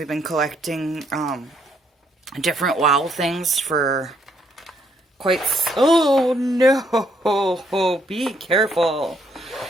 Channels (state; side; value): normal; both; correlation 0.71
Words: been collecting different WoW things for quite... Oh, no. Be careful.